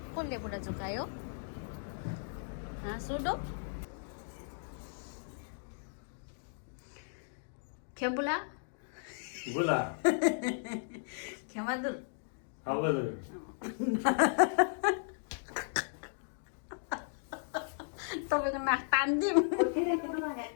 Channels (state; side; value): silent; right; digital silence